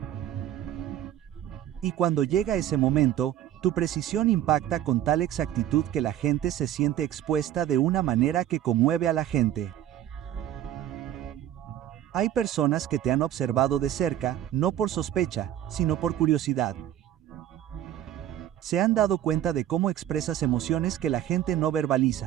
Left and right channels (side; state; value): left; quieter; 11.8 dB